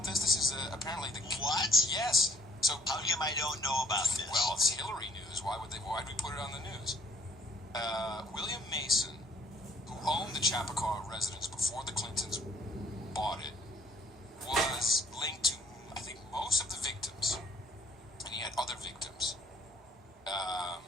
this? This is apparently the... What? Yes. So how come I don't know about this? Well, it's Hillary news. Why'd we put it on the news? William Mason, who owned the Chappaqua residence before the Clintons bought it, was linked to, I think, most of the victims, and he had other victims.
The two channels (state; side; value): normal; both; correlation 0.61